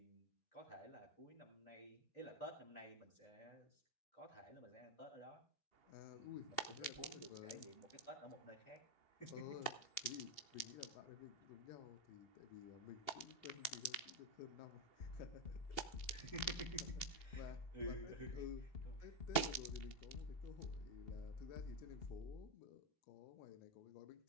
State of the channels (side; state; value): right; late; 2.8 ms